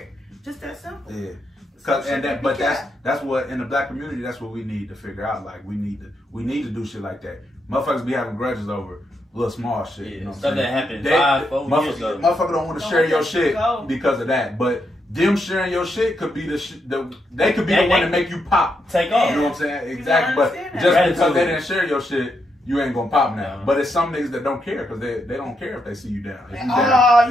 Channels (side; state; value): both; normal; correlation 0.81